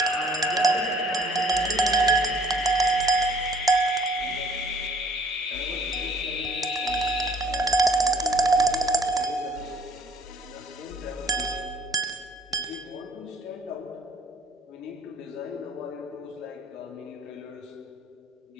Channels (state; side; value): normal; both; correlation 0.58